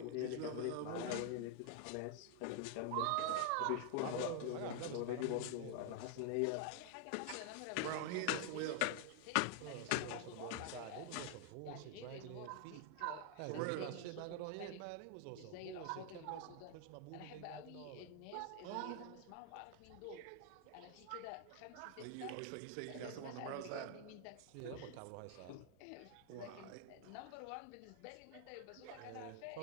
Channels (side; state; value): both; different; correlation 0.00